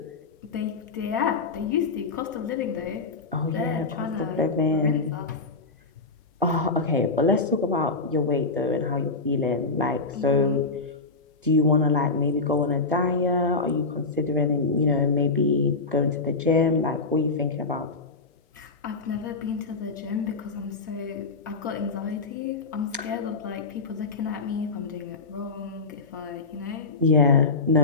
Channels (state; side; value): quieter; right; 3.9 dB